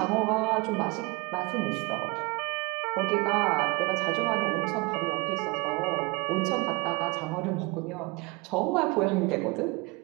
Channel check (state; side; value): quieter; left; 25.7 dB